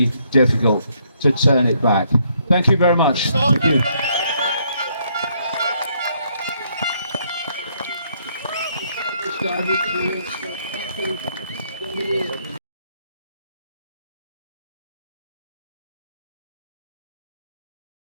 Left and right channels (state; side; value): inverted; both; correlation -0.71